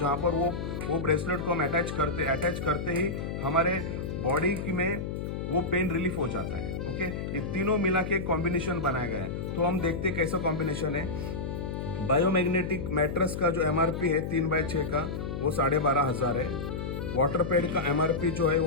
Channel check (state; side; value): noise; left; hum, 4 dB below the sound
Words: पर वो ब्रेसलेट को हम अटैच करते ही हमारे बॉडी में वो पेन रिलीफ हो जाता है। ओके, ये तीनों मिला के एक कॉम्बिनेशन बनाया गया है। तो हम देखते हैं कैसा कॉम्बिनेशन है। बायोमैग्नेटिक मैट्रेस का जो MRP है 3x6 का, वो 12,500 है। वाटर पैड का MRP जो है